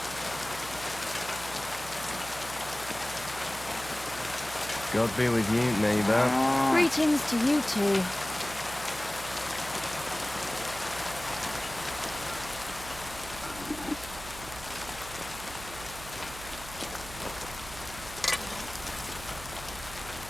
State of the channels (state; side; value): noise; right; hum, 14 dB below the sound